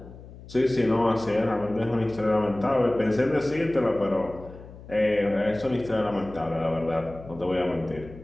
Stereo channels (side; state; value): left; noise; hum, 17 dB below the sound